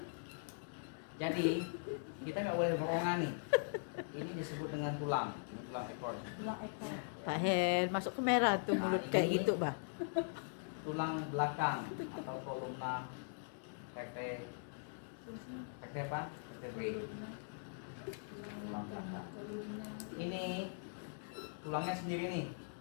Jadi kita nggak boleh borongan nih. Ini disebut dengan tulang, ini tulang ekor. Tulang ekor. Pak Hen masuk ke merah tuh Nah, mulut ini- kayak gitu, bah. Tulang belakang atau kolumna vertebrae apa? Vertebrae. Tulang belakang. Ini tulangnya sendiri nih,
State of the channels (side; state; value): right; silent; digital silence